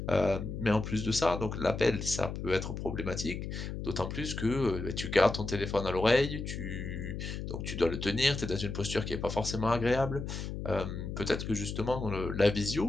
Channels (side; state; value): left; noise; hum, 6 dB below the sound